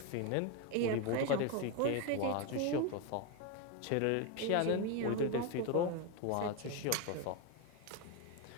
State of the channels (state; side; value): different; both; correlation 0.02